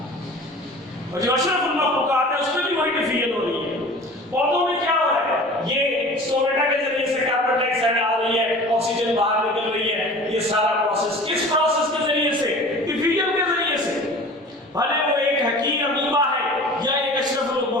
اور جو اشرف المخلوقات ہے اس میں بھی وہی ڈیفیوژن ہو رہی ہے. پودوں میں کیا ہو رہا ہے؟ یہ سٹومیٹا کے ذریعے سے کاربن ڈائی آکسائڈ آ رہی ہے, آکسیجن باہر نکل رہی ہے. یہ سارا پروسیس کس پروسیس کے ذریعے سے؟ ڈیفیوژن کے ذریعے سے. بھلے وہ ایک حقیقی امیبا ہے یا ایک اشرف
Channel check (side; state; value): both; normal; correlation 0.41